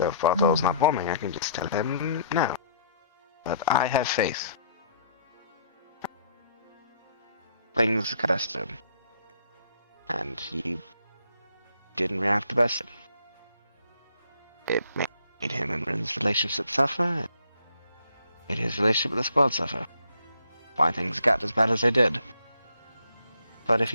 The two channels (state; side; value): inverted; both; correlation -0.64